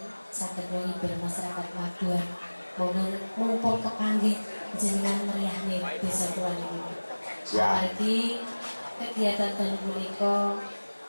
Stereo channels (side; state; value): both; inverted; correlation -1.00